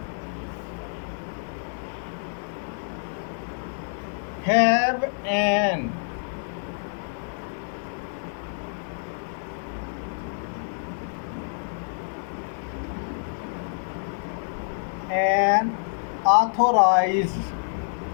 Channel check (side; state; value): right; silent; 60 dB below the other